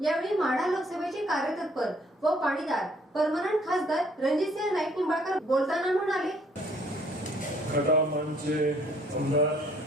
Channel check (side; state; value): both; normal; correlation 0.62